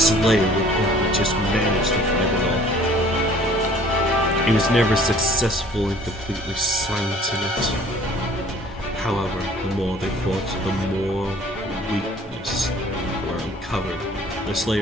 would only just manage to fight it off. He was never successful in completely silencing it. However, the more they fought, the more weakness were uncovered. The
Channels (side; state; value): both; normal; correlation 0.53